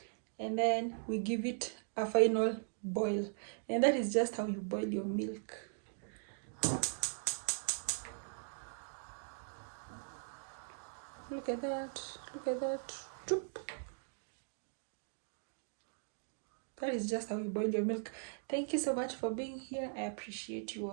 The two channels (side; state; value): left; silent; digital silence